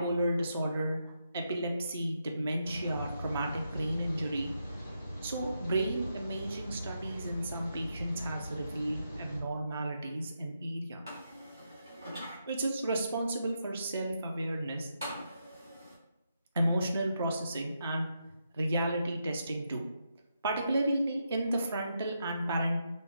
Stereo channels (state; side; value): inverted; both; correlation -0.83